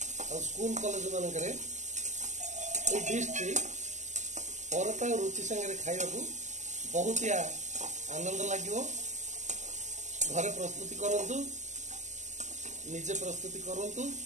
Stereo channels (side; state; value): left; late; 0.34 ms